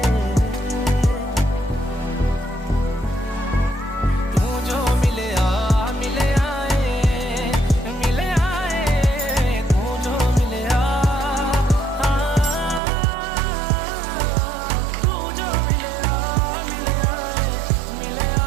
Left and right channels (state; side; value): drops out; left; at 12.8 s